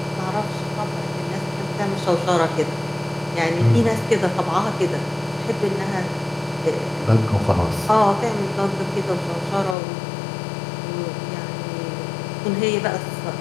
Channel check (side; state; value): right; drops out; at 9.8 s